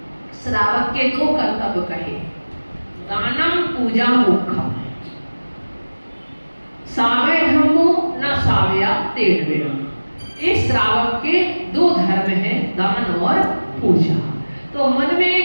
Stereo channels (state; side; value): inverted; both; correlation -1.00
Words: श्रावक के दो कर्तव्य कहे, दानम पूजा मुखम, सावय धर्मो न सावया तेढ़वेणा। इस श्रावक के दो धर्म हैं, दान और पूजा। तो मन में